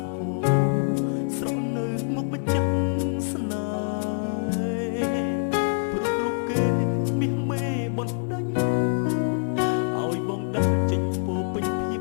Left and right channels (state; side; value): silent; right; digital silence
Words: ក់ហូរស្រក់នៅមុខម្ចាស់ស្នេហ៍ព្រោះរូបគេមាសមេបណ្ដាញឲ្យបងដើរចេញពោពេញភាព